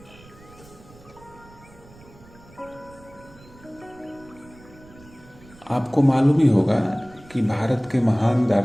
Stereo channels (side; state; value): right; noise; rumble, 23 dB below the sound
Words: आपको मालूम ही होगा कि भारत के महान